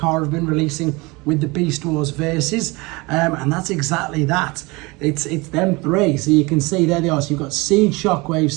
have been releasing with the Beast Wars Versus, and that's exactly that. It's them three, so you can see there they are. So you've got Siege Shockwave,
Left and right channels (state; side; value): quieter; left; 24.7 dB